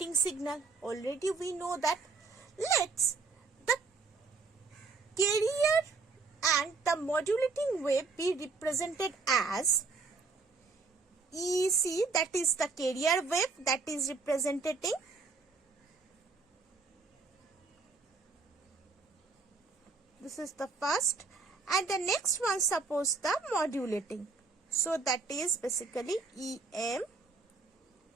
signal. Already we know that. Let's the carrier and the modulating wave be represented as EC, that is the carrier wave that is representing this is the first, and the next one suppose the modulating. So that is basically Em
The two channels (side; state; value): left; quieter; 4.3 dB